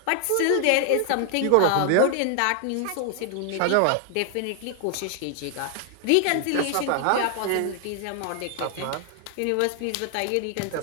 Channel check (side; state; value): both; different; correlation 0.00